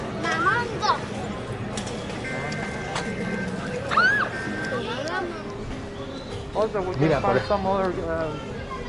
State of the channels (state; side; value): identical; both; correlation 1.00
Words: Mamando. also we Mira, can find por- some other